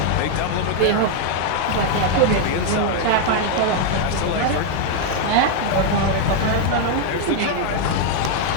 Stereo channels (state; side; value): different; both; correlation 0.00